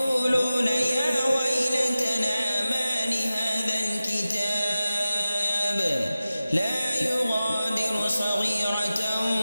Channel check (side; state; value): both; inverted; correlation -0.95